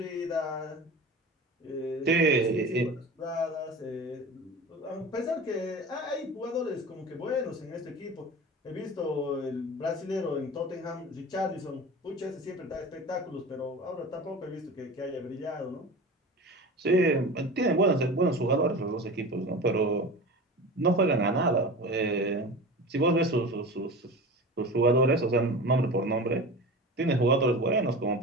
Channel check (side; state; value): both; normal; correlation 0.32